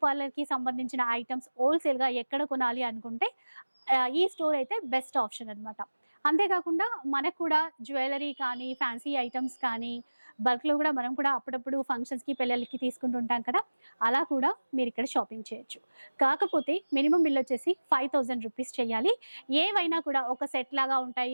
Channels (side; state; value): both; inverted; correlation -1.00